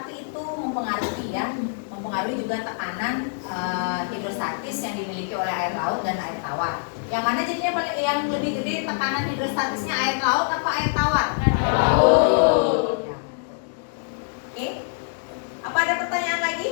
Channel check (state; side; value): silent; right; digital silence